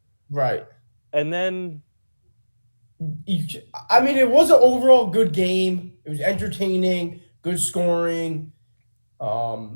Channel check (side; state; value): both; inverted; correlation -1.00